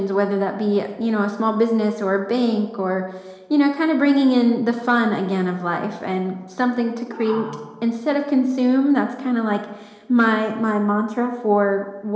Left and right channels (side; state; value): both; identical; correlation 1.00